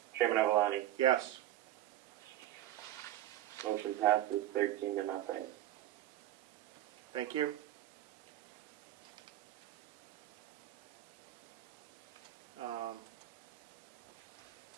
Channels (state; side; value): quieter; left; 13.5 dB